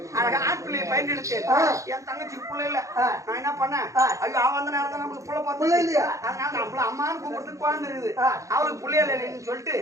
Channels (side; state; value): left; late; 0.15 ms